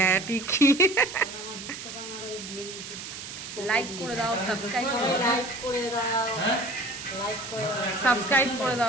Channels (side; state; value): right; noise; hiss, 10 dB below the sound